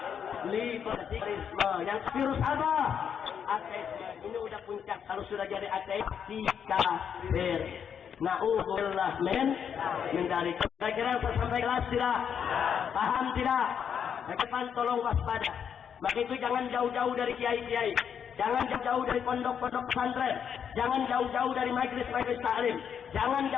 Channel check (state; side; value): quieter; right; 7.8 dB